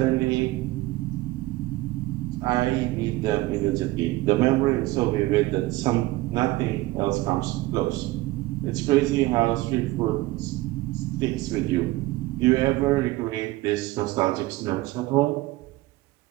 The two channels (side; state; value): left; quieter; 19.0 dB